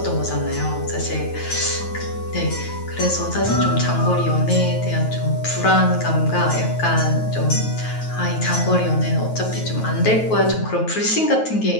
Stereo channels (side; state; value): right; late; 9.2 ms